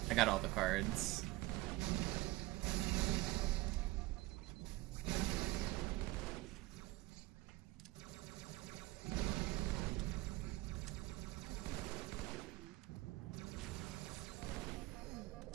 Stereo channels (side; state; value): left; quieter; 19.4 dB